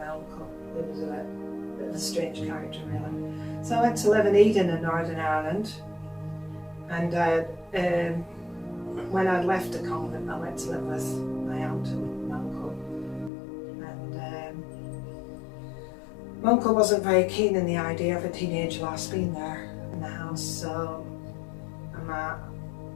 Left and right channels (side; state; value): right; drops out; at 13.3 s